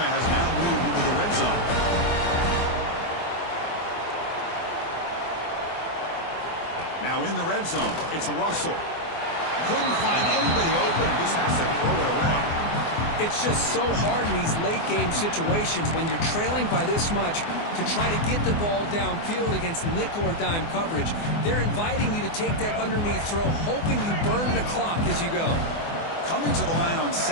has now moved into the red zone. Now in the red zone, it's Russell. Couldn't find anybody open and just has to throw it away. It's just so hard in these late-game situations when you're trailing by this much to try to get the ball downfield against nickel or dime coverage. They're inviting you to take that underneath throw, hoping you burn the clock as you go. Coming to the line on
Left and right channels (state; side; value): late; right; 24 ms